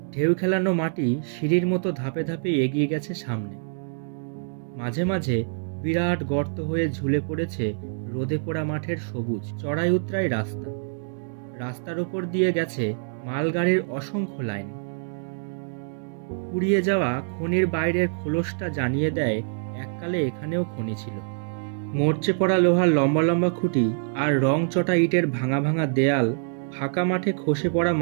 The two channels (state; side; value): silent; left; digital silence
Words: ঢেউ খেলানো মাটি সিঁড়ির মতো ধাপে ধাপে এগিয়ে গেছে সামনে। মাঝে মাঝে বিরাট গর্ত হয়ে ঝুলে পড়েছে রোদে পোড়া মাঠের সবুজ চড়াই উতরাই রাস্তা। রাস্তার ওপর দিয়ে গেছে মালগাড়ির অসংখ্য লাইন। পুড়িয়ে যাওয়া খনির বাইরের খোলসটা জানিয়ে দেয় এককালে এখানেও খনি ছিল। মরচে পড়া লোহার লম্বা লম্বা খুঁটি আর রং চটা ইটের ভাঙা ভাঙা দেয়াল ফাঁকা মাঠে খসে পড়া